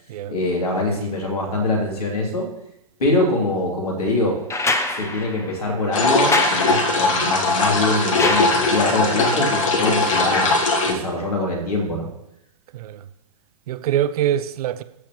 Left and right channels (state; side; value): normal; both; correlation 0.04